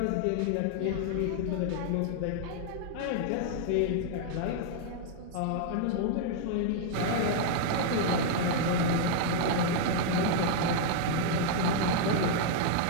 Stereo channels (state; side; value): different; both; correlation 0.00